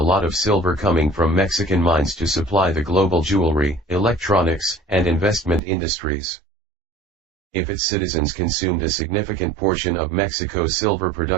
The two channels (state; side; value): drops out; left; at 5.6 s